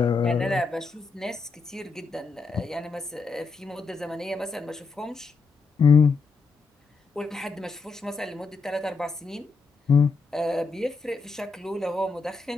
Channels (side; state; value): right; quieter; 4.2 dB